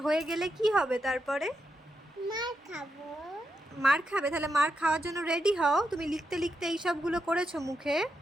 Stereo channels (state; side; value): normal; both; correlation 0.85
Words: হয়ে গেলে কি হবে তারপরে? মার খাবো। মার খাবে? তাহলে মার খাওয়ার জন্য রেডি হও। তুমি লিখতে লিখতে এই সবগুলো করেছো মুখে।